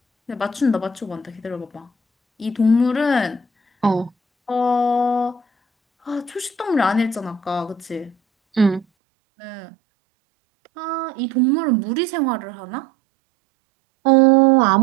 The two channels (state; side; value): drops out; left; at 8.8 s